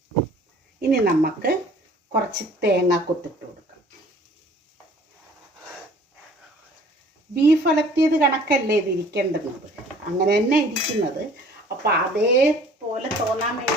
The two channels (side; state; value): both; normal; correlation 0.52